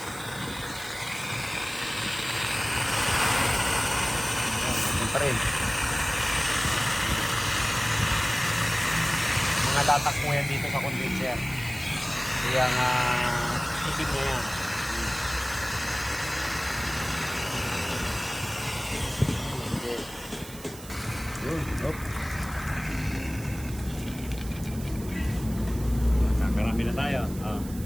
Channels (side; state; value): right; noise; hiss, 16 dB below the sound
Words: Yan, pa rin. Mga latak po yan dito sa condenser. Kaya nga, itim na yan. Yun, hop. Kakarami na tayo.